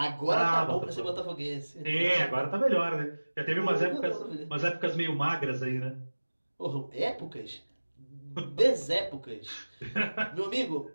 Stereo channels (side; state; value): both; inverted; correlation -1.00